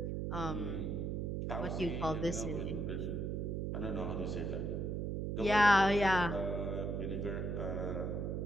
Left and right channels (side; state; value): right; noise; hum, 1 dB below the sound